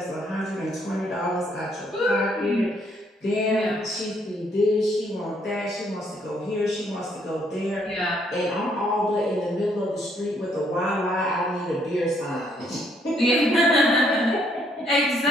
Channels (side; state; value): both; normal; correlation 0.69